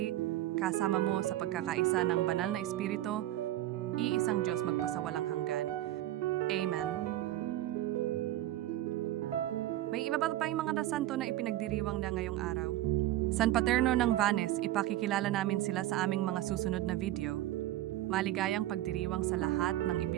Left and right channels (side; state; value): left; quieter; 14.5 dB